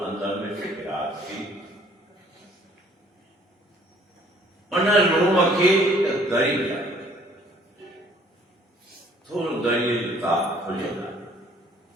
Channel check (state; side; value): normal; both; correlation 0.58